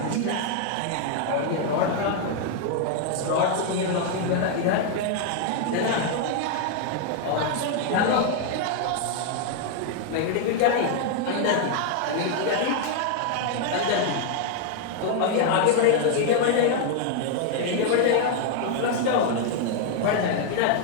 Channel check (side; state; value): both; different; correlation 0.00